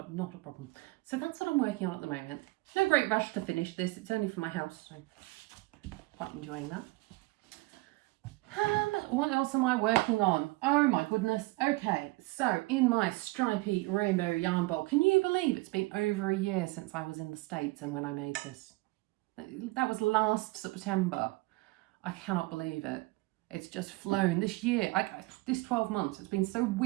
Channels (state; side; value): quieter; left; 22.6 dB